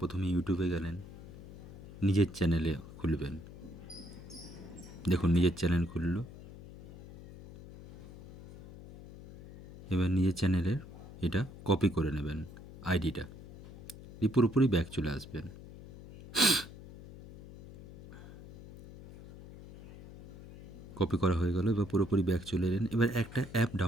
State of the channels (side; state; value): left; noise; hum, 16 dB below the sound